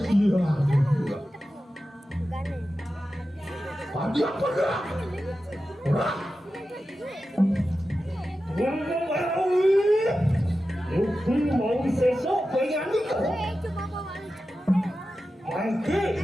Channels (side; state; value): both; normal; correlation 0.93